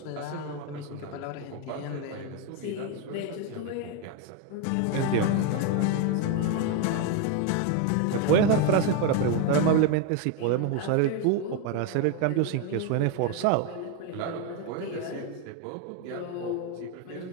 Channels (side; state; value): both; different; correlation 0.02